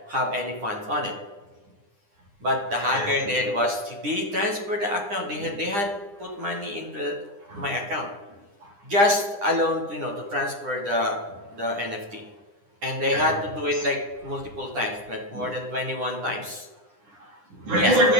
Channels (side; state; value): left; late; 9.9 ms